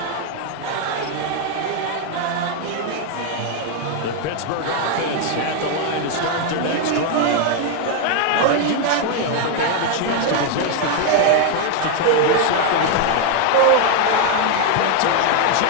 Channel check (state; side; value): different; both; correlation 0.01